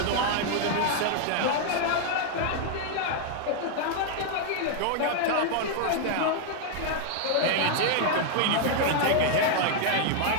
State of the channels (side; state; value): both; different; correlation 0.00